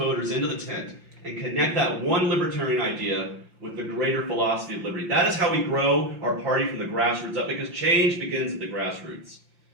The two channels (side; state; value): left; late; 5.7 ms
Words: into the tent and connect that one libertarian idea with the greater philosophy of liberty. That is how we grow our party from the grassroots up, because change begins at the grassroots.